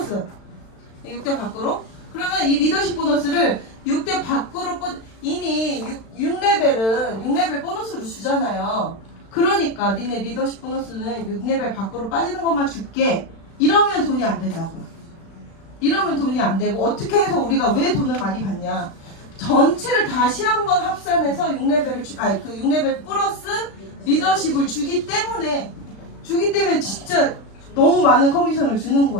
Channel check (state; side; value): late; right; 36 ms